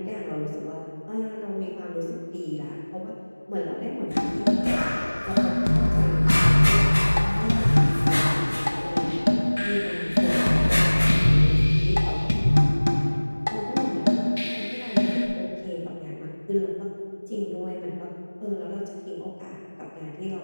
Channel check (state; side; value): inverted; both; correlation -1.00